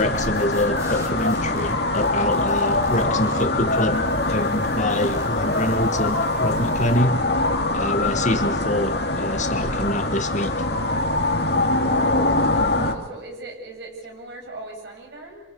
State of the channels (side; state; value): both; normal; correlation 0.03